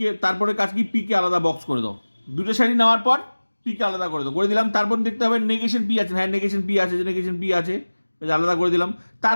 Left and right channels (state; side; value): inverted; both; correlation -1.00